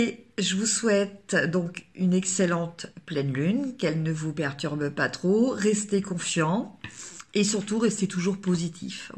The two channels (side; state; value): both; identical; correlation 1.00